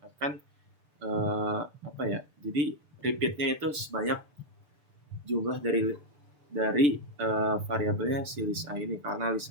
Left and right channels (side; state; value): left; late; 6.8 ms